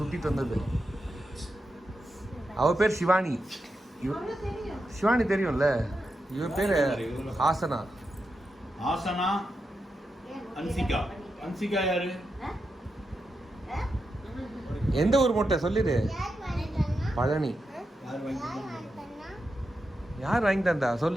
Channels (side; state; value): both; normal; correlation 0.87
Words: வந்தது. அவ பேர் சிவானி. சிவானி தெரியும்ல. இவ பேரு ஆசனா. ஆசனா. அன்சிகா. அன்சிகா யாரு? எந்த ஊர் மொட்டை சொல்லிடு. பழனி. யார் வாங்கி தந்தா